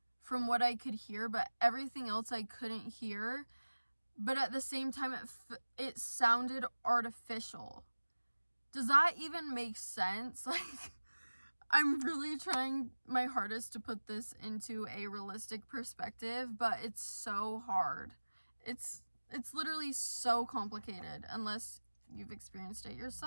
from what I could hear, but everything else I couldn't hear. But at the same time, it sounded artificial. Does that even make sense? Like, I'm really trying my hardest to put this into a realistic perspective, but it's so hard. It's literally so complicated unless you've experienced it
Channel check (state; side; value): inverted; both; correlation -1.00